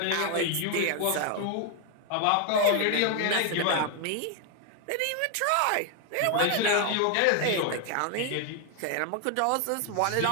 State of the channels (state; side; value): different; both; correlation 0.00